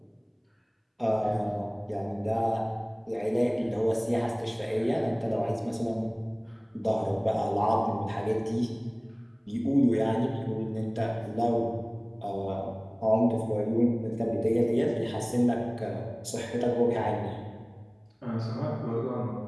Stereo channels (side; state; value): both; identical; correlation 1.00